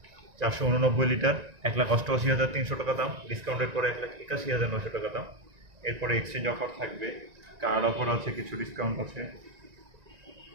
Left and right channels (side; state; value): left; late; 1.9 ms